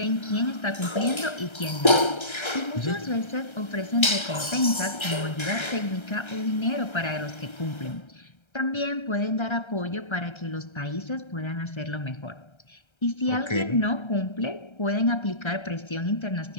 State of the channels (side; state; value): right; late; 1.3 ms